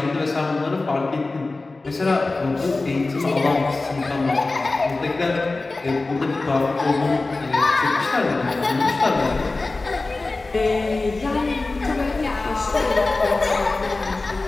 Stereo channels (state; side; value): quieter; right; 3.4 dB